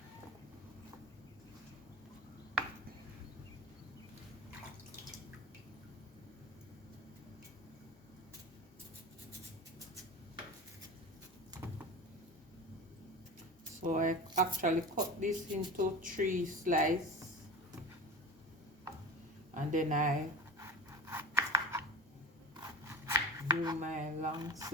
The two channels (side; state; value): both; normal; correlation 0.31